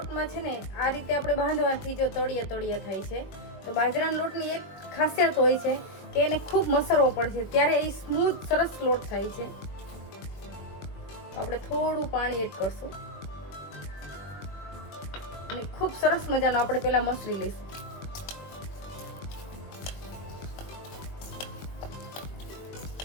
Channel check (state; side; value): late; right; 21 ms